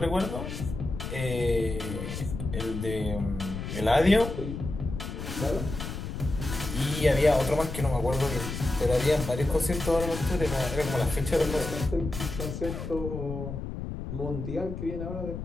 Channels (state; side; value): noise; left; rumble, 6 dB below the sound